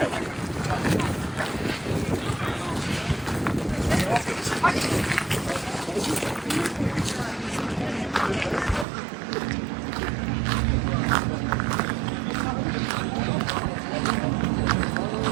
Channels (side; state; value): left; drops out; at 8.8 s